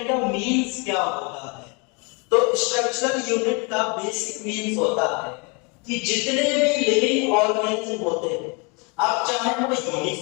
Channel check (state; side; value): quieter; right; 31.4 dB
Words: का मीन्स क्या होता है। तो स्ट्रक्चरल यूनिट का बेसिक मीन्स होता है कि जितने भी लिविंग ऑर्गेनिज्म होते हैं, अब चाहे वो